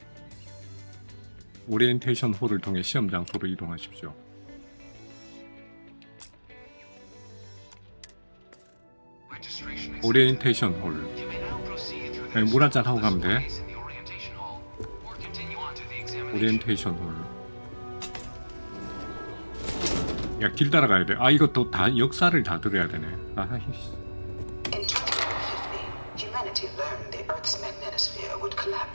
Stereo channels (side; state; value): both; inverted; correlation -1.00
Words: 오리엔테이션 홀을 통해 시험 장소로 이동하십시오. 오리엔테이션 홀. 물 한잔 하고 가면 돼. 오리엔테이션 홀. 야, 길 따라가야 돼. 아, 이것도 다 역사를 다 들어야 되네. 아이씨.